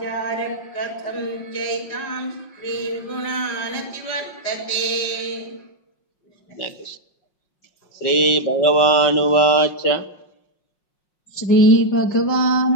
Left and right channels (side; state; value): right; late; 5.6 ms